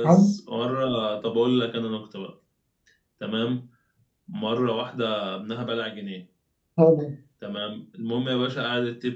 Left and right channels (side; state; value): both; identical; correlation 1.00